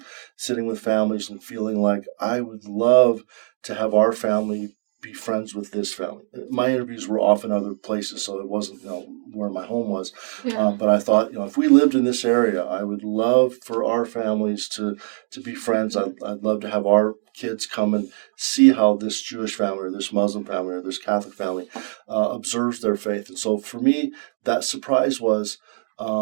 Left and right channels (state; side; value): silent; left; digital silence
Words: sitting with families and feeling like I would love to have our family be friends with this family. My interviews were often other places, so it wasn't where my home was. Yeah. But I thought, if we lived in this area, I would love for our families to be friends. I'd love to have our kids come and see how this Jewish family or this Muslim family or this Catholic family observes their faith. And so for me, that surprise was